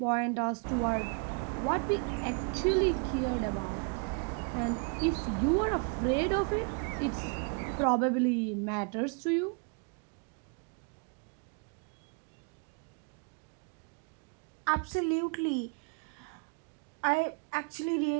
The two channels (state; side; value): quieter; left; 34.6 dB